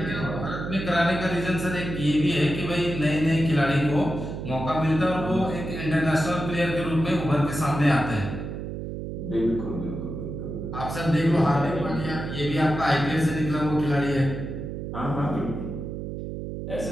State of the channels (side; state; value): right; noise; hum, 6 dB below the sound